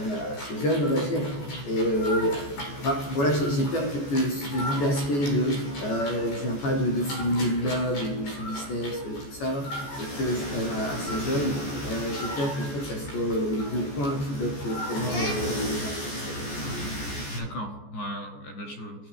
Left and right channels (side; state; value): right; late; 14 ms